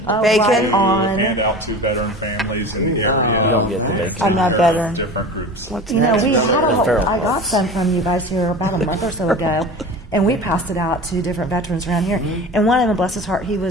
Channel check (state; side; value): normal; both; correlation 0.34